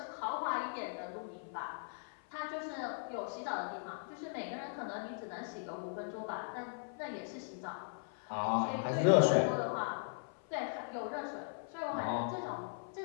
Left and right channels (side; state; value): right; silent; 52 dB below the other